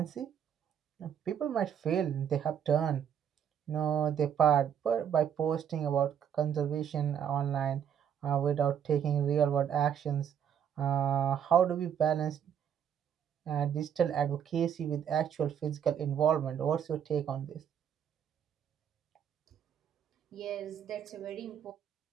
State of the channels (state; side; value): quieter; left; 8.6 dB